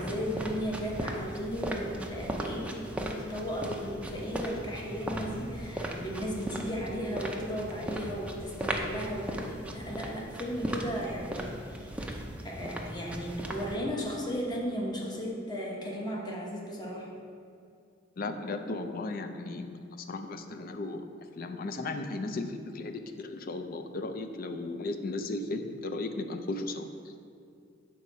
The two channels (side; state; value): both; normal; correlation 0.53